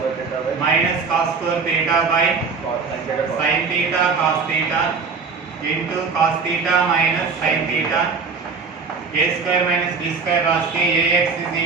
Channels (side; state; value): left; quieter; 4.9 dB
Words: minus cos square theta by sin theta cos theta into cos theta minus sin theta. a square minus b square రాస్తే ax is